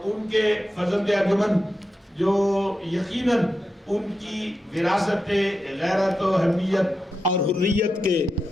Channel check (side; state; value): both; normal; correlation 0.89